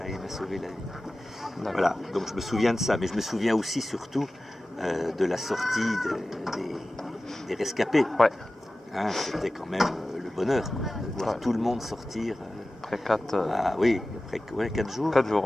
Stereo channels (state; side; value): normal; both; correlation 0.96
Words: et il m'a sauvé la vie. Voilà, donc je me souviens de ça, mais je me souviens aussi surtout de la sortie des rescapés. C'était quand même le bonheur, de voir tout le monde sortir. Après 4 jours. 4